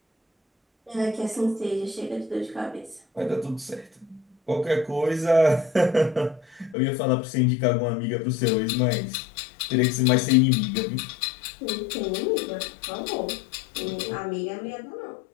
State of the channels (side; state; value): right; drops out; at 6.8 s